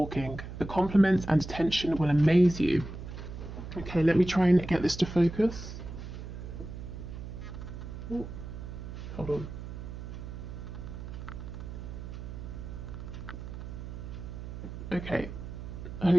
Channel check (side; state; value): right; noise; hum, 9 dB below the sound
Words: The compliments and attention will amaze you. Okay, let me try and get this to focus. Ooh, hold on. Okay,